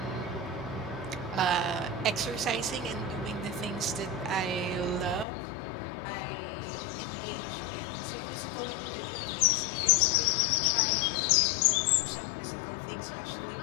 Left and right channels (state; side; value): drops out; right; at 5.2 s